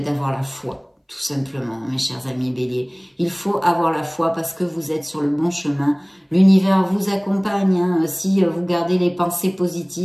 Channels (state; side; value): identical; both; correlation 1.00